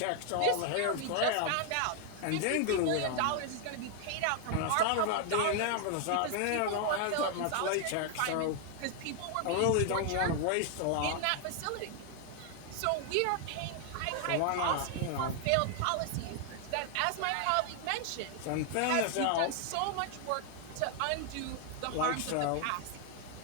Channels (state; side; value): different; both; correlation 0.00